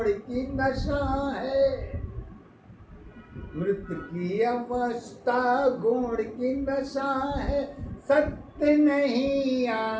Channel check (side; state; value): both; identical; correlation 1.00